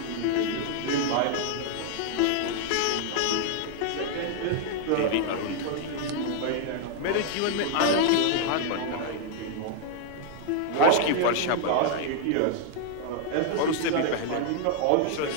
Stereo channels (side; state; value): both; different; correlation 0.00